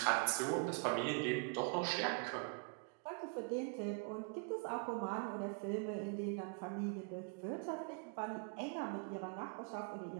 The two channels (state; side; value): quieter; left; 37.3 dB